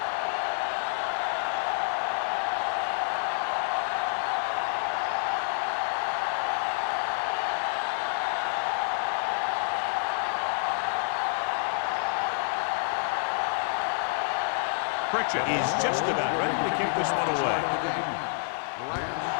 Pritchett is just about ready to kick this one away.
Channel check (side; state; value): right; silent; 56 dB below the other